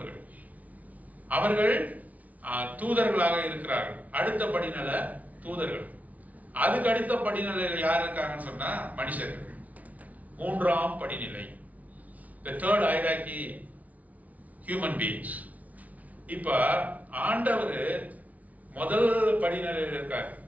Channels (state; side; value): late; left; 0.072 ms